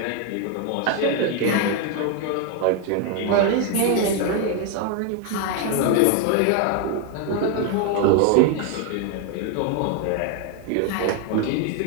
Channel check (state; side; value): different; both; correlation 0.01